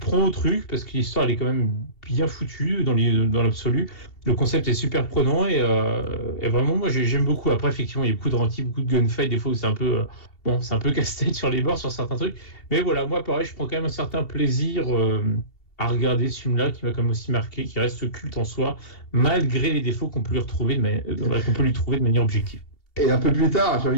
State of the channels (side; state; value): right; late; 2.7 ms